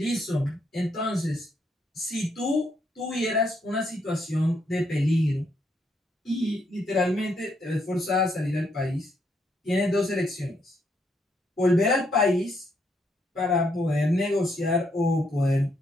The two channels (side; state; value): both; normal; correlation 0.75